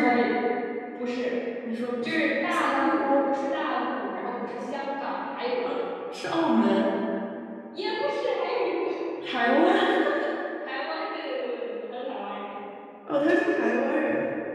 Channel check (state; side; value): identical; both; correlation 1.00